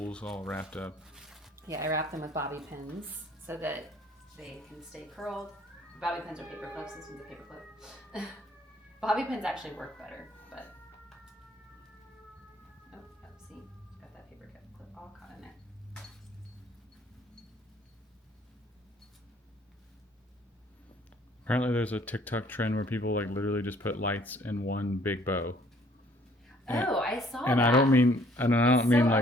all wrapped up. Yeah, I wrap them with bobby pins so that they can stay curled. Bobby pins are paper clips. This one's a paper clip. Bobby pins actually work better, but see, got that paper clip all caught in there. Apparently, there's a TikTok trend where people like literally just put lights in one big bow. Oh, I saw And that. I don't mean so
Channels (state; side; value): normal; both; correlation 0.59